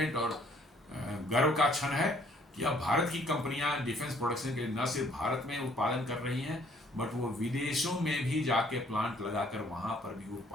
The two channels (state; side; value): normal; both; correlation 0.62